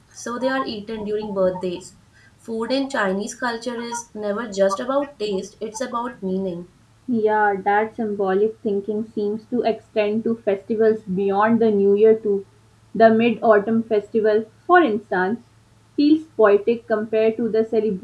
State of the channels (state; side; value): identical; both; correlation 1.00